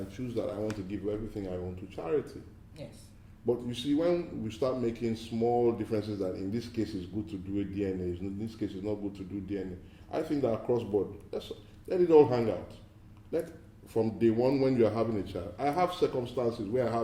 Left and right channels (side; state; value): both; identical; correlation 1.00